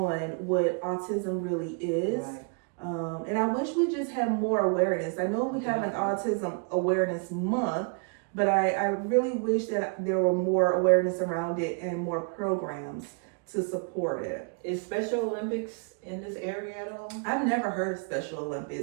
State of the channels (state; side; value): quieter; left; 38.9 dB